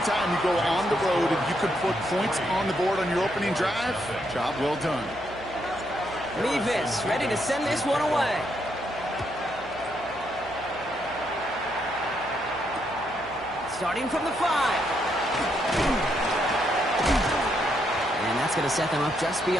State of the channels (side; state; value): right; noise; hum, 19 dB below the sound